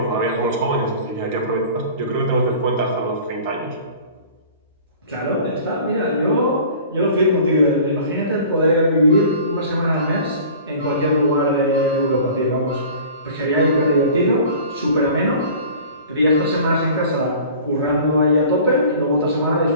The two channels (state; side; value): inverted; both; correlation -0.44